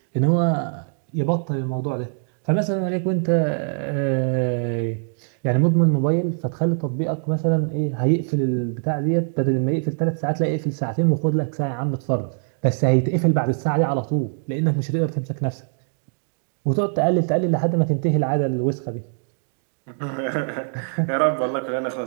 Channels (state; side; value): silent; left; 64 dB below the other